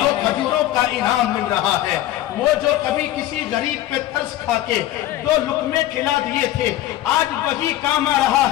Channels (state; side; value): quieter; right; 14.1 dB